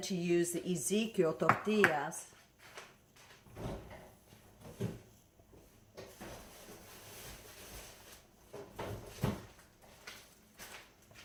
to use the Ezekiel tortillas.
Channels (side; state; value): both; identical; correlation 1.00